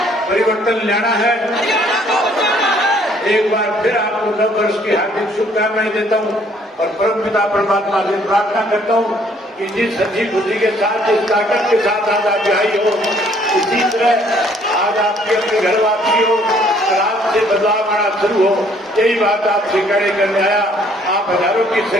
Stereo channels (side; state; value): both; normal; correlation 0.62